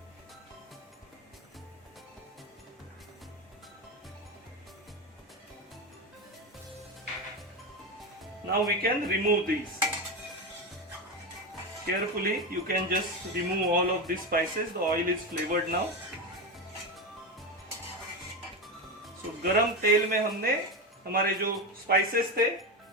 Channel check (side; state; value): both; normal; correlation 0.16